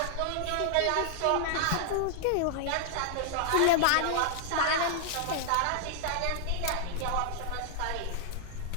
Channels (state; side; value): different; both; correlation 0.00